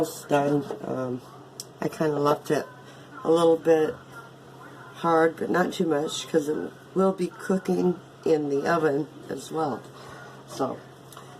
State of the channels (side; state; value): both; identical; correlation 1.00